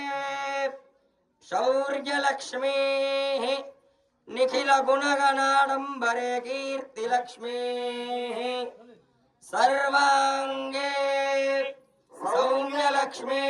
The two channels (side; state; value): both; identical; correlation 1.00